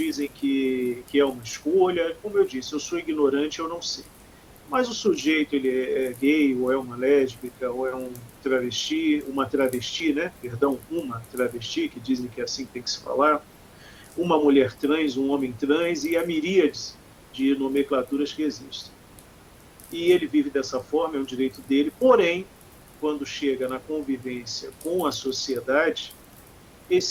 que é uma escolha. Como eu disse, eu sou ignorante, eu não sei. Mas o sujeito, ele é gay, ou é uma lésbica, ou é um travesti, uma travesti, né? Perdão, uma travesti, que dizem que é assim que tem que se falar, uma mulher trans, um homem trans e a miríades de nomenclaturas que existem. E ele vive dessa forma, é um direito dele, porém, quando chega na convivência com a sociedade,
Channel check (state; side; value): identical; both; correlation 1.00